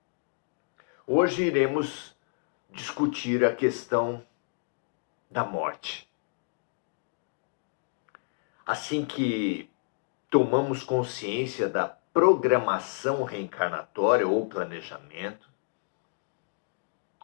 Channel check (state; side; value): silent; right; digital silence